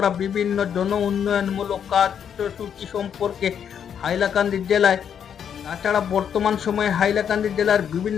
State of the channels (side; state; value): right; quieter; 8.3 dB